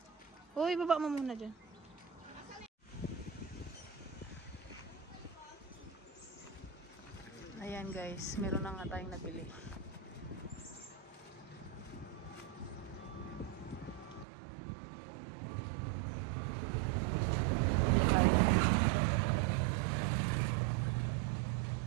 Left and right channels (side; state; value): left; drops out; at 14.2 s